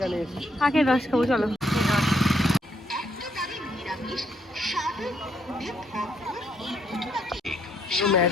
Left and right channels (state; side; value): normal; both; correlation 0.72